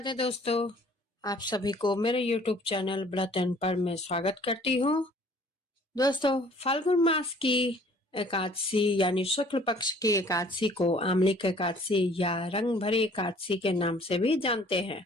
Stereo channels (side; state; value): both; normal; correlation 0.55